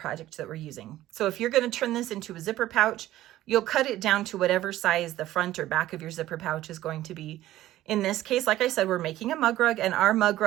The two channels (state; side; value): quieter; left; 14.7 dB